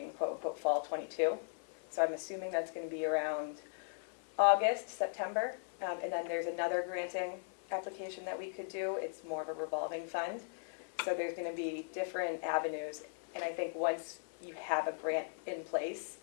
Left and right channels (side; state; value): right; silent; 52 dB below the other